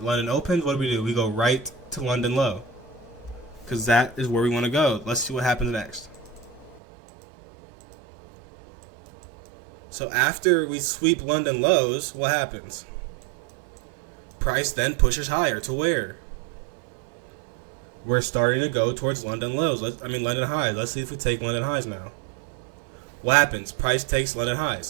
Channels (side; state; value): left; drops out; at 6.8 s